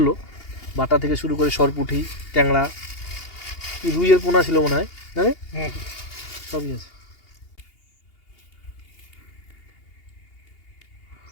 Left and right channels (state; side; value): late; right; 2.8 ms